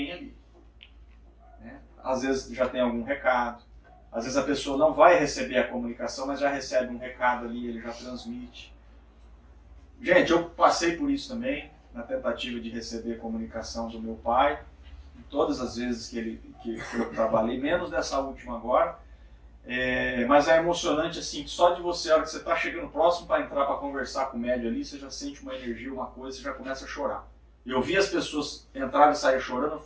ali. Né? Às vezes já tem algum recado, às vezes a pessoa não vai receber a comunicação, mas já recebe um recado ali, ele já transmite. Gente, eu passei por isso também, na tentativa de receber a comunicação do meu pai, todas as vezes que eu trabalhei, menos dessa última agora. Mas é emocionante assim, que só de você, a hora que você está chegando próximo para entrar para conversar com o médium ali, você já sente uma energia, uma coisa, você já começa a chorar. Eu vi as pessoas entrarem e sair chorando, eu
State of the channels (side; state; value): both; identical; correlation 1.00